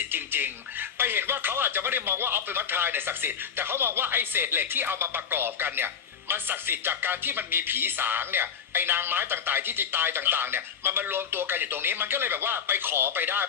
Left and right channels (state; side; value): quieter; right; 7.4 dB